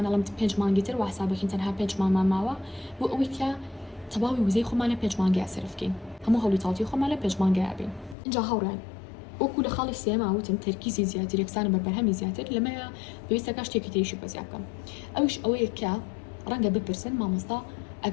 5 مانگی تر واسابەکەین تەنها 5 مانگمان ماوە بۆ ئەوەی کە تەواوی وزەی خۆمانە 5 مانگی ئاسرفکەین هەموو هەوڵی تاڵتی خۆمان لە 5 مانگی ئابین اینجا هەوڕێن وەکو لە خاڵی سێما وتم تەرکیزی زیاتر یەکسانە بە بەرهەمی زیاتر لەمەیە پێویستەکە شتێکی تریشی بەزیا بکەم ئەوش ئەوەیە کە ڕەنگە بپرسن مامۆستا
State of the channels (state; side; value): drops out; right; at 8.2 s